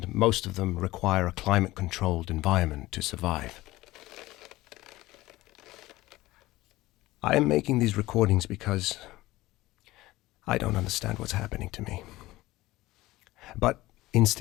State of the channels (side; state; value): right; quieter; 18.1 dB